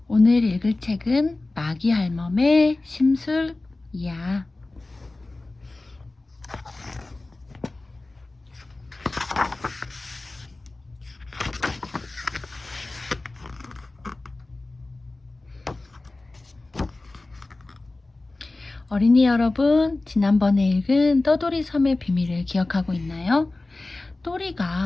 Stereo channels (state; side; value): quieter; right; 3.1 dB